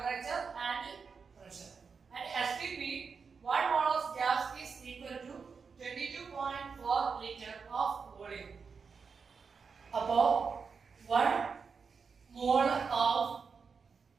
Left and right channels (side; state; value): left; quieter; 5.5 dB